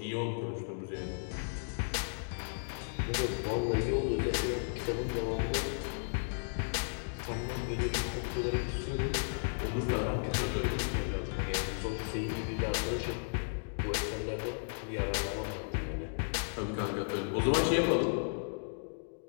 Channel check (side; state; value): right; silent; digital silence